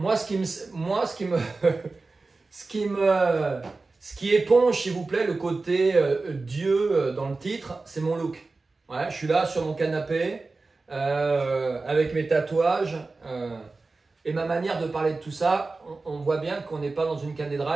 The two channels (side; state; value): left; quieter; 3.7 dB